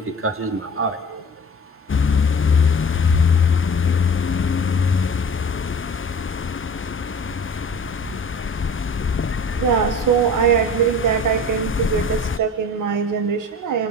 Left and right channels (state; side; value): normal; both; correlation 0.40